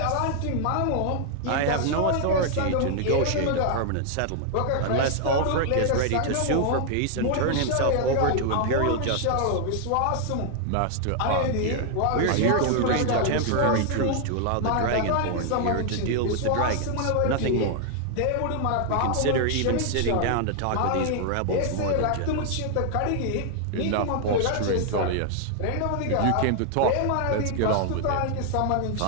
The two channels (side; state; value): both; different; correlation 0.00